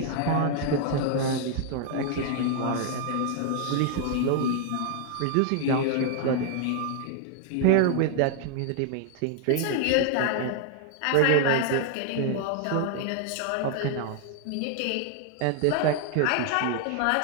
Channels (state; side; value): different; both; correlation 0.00